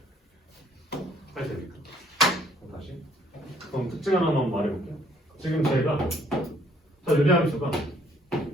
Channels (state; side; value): normal; both; correlation 0.63